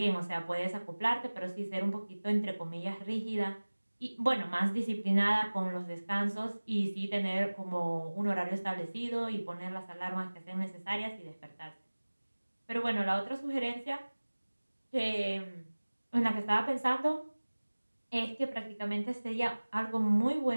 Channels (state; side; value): inverted; both; correlation -1.00